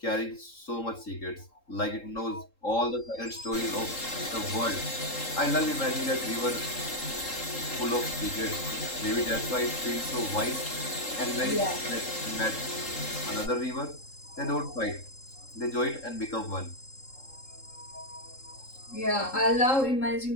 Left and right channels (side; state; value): right; late; 3.7 ms